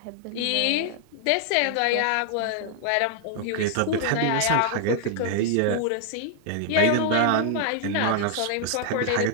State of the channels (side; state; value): both; different; correlation 0.00